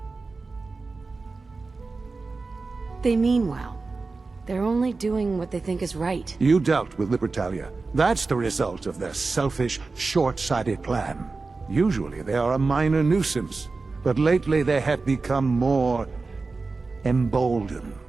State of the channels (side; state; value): left; quieter; 3.9 dB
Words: They mean well. They're only doing what they think is right. You dealt with Libertalia. That's the result of their selfish, short-sighted plan. Usually they are a minor nuisance, but lately they have become more emboldened.